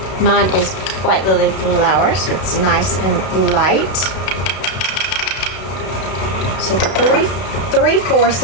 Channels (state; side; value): late; right; 32 ms